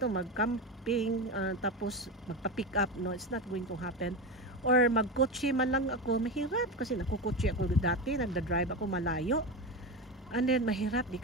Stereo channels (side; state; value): both; normal; correlation 0.20